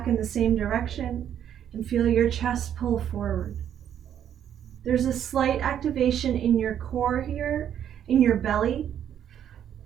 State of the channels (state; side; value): quieter; left; 9.7 dB